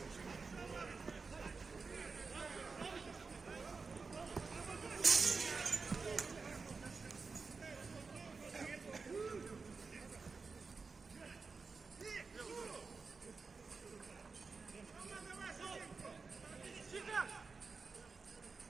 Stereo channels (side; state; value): left; quieter; 4.5 dB